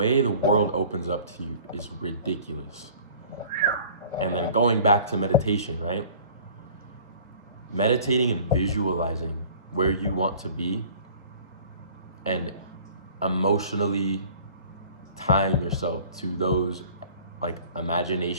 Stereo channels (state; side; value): inverted; both; correlation -0.49